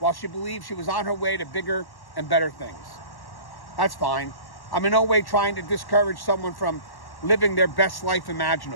she believed she was on her way to bigger and better things. That's fine. I'm in no way trying to discourage someone from living their best life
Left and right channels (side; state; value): right; late; 1.1 ms